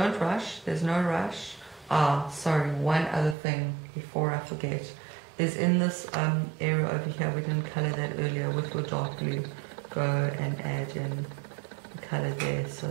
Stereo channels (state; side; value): drops out; left; at 3.4 s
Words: rush, there's no rush. Sorry, one other thing before I forget is in this area over here, we didn't color that earlier with your dark blue. Go and add in the color there so